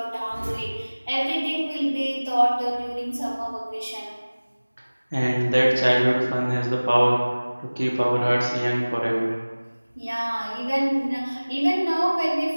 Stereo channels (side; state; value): both; inverted; correlation -1.00